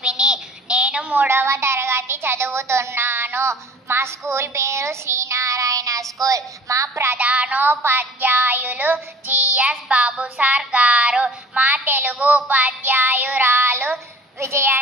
నేను 3వ తరగతి చదువుతున్నాను. మా స్కూల్ పేరు శ్రీనారాయణ స్కూల్. మా ప్రధానోపాధ్యాయులు జిఎస్ బాబు సార్ గారు. మా తెలుగు ఉపాధ్యాయురాలు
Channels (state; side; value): normal; both; correlation 0.45